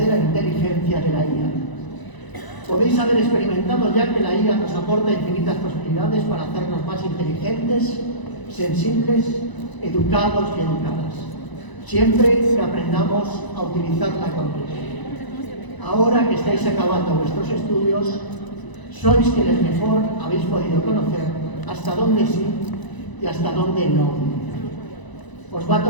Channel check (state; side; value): late; right; 1.0 ms